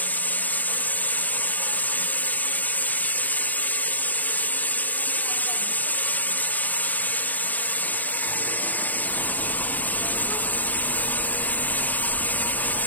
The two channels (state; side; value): late; right; 0.084 ms